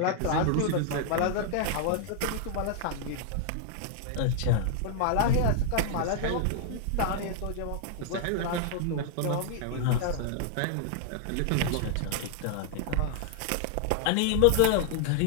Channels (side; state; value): both; different; correlation 0.00